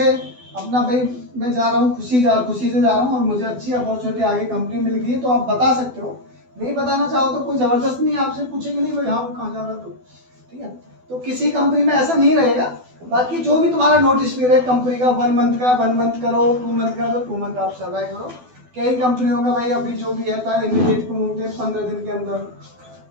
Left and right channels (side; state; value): left; late; 12 ms